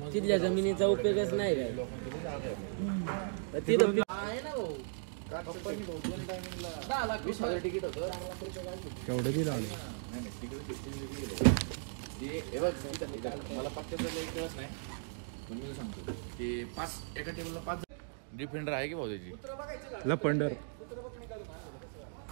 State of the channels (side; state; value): left; silent; digital silence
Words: तिथल्या जमिनीचा उपयोगच नाही काय तिथं तिकीट होतं केवढं बिल आले. मला फक्त सांगतो ते 5 एका टेबलला 5 डिफेंडर आहे की भाऊ त्याची लपंडर